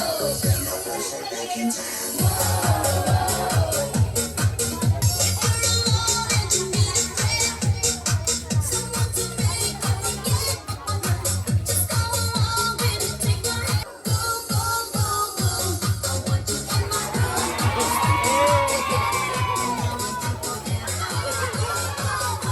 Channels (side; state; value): both; identical; correlation 1.00